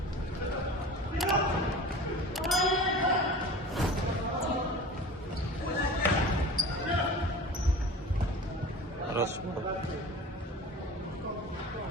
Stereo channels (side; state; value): both; normal; correlation 0.38